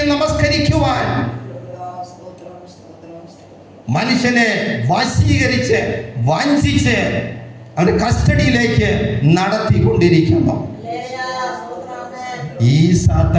നമസ്കരിക്കുവാൻ മനുഷ്യനെ വശീകരിച്ച് വഞ്ചിച്ച് അവന്റെ കസ്റ്റഡിയിലേക്ക് നടത്തിക്കൊണ്ടിരിക്കുന്നു. ഈ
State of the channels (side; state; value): both; identical; correlation 1.00